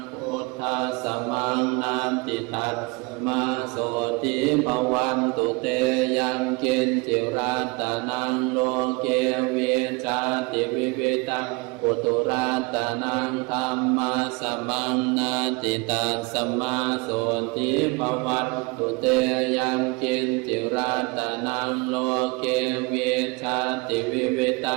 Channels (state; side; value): quieter; left; 27.2 dB